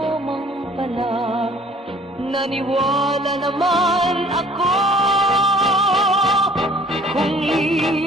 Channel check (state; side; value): normal; both; correlation 0.54